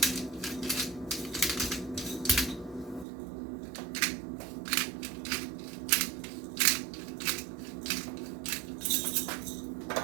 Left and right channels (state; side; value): drops out; left; at 3.1 s